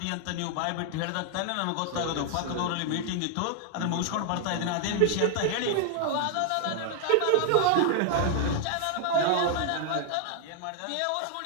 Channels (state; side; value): different; both; correlation 0.00